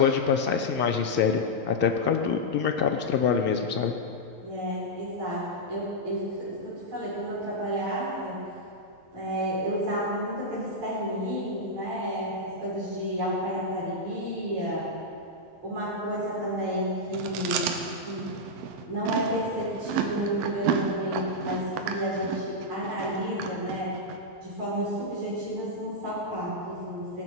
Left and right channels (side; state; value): left; late; 11 ms